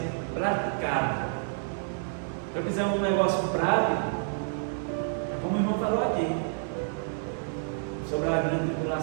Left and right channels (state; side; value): silent; left; digital silence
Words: praticado. Se eu quiser um negócio prático, é como o irmão falou aqui, sobre a grande